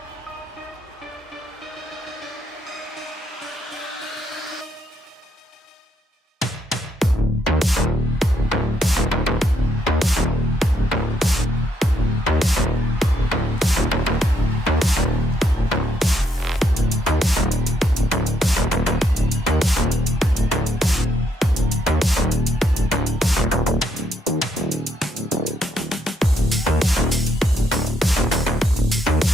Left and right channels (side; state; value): both; normal; correlation 0.75